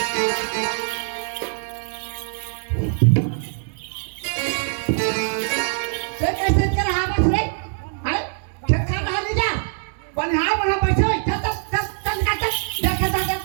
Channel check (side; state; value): left; silent; 64 dB below the other